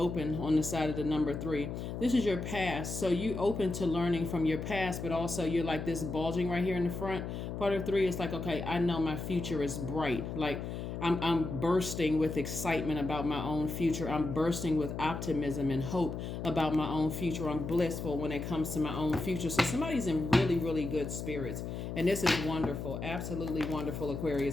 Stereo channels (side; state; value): left; noise; hum, 5 dB below the sound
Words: on the side of the number 3. This is your past. So you open to learning from your past, but also you're like this bulging right here in the front. Part of 3 is like, okay, I know my future is bright. Like, I'm bursting with excitement about my own future. I'm bursting with optimism and hope about my own future. I'm blissful when it comes to my own future. So somebody's in really, really good spirits. And this is wonderful. Absolutely wonderful,